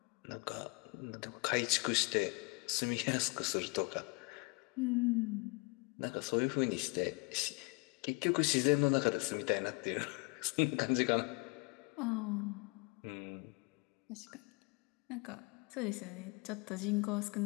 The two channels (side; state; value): right; quieter; 30.1 dB